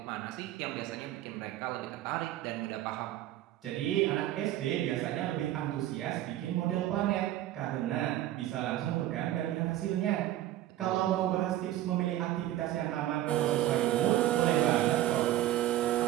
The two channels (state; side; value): quieter; left; 13.7 dB